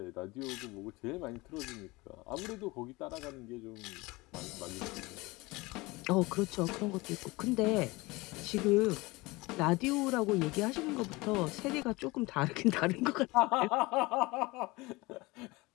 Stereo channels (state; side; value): quieter; right; 22.8 dB